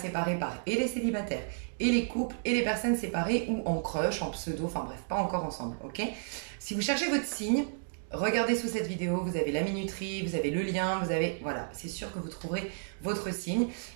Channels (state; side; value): silent; left; digital silence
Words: par et les célibataires, et les couples, et les personnes séparées, ou en crush, en pseudo, enfin bref, pas encore ensemble, ok? Si vous cherchez votre signe, regardez sous cette vidéo, vous avez la minuterie, vous avez le lien, vous avez... Voilà, c'est sûr que vous trouverez votre signe.